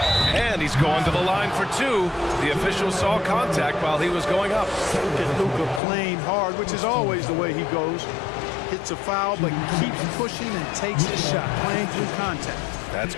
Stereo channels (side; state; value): right; drops out; at 5.8 s